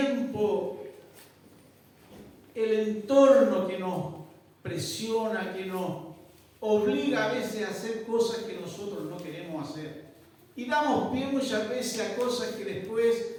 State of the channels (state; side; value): identical; both; correlation 1.00